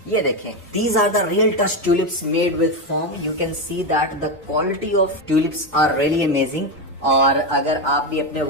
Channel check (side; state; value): both; normal; correlation 0.11